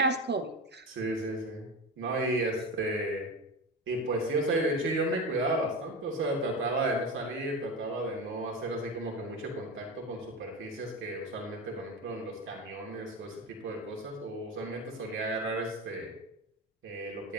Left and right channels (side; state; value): both; normal; correlation 0.23